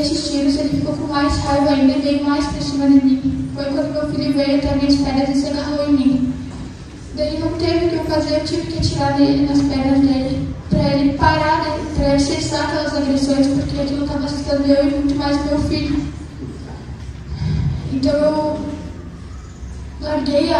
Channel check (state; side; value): identical; both; correlation 1.00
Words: tiros ele ficou com mais raiva ainda e veio mais para cima de mim. Foi quando meu filho veio até minhas pernas e se agarrou em mim. Daí não teve o que eu fazer, eu tive que atirar nele, nas pernas dele, para ele parar, né, para ele cessar aquelas agressões, porque aquilo estava assustando eu e muito mais meu filho. Então eu larguei